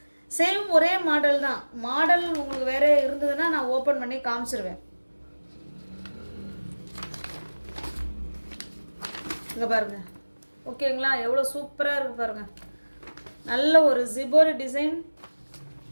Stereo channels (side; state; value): both; inverted; correlation -1.00